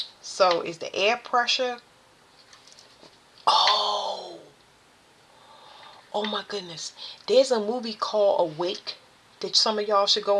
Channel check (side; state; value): both; identical; correlation 1.00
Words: So is the air pressure? Oh, Oh my goodness. There's a movie called Awake that some of y'all should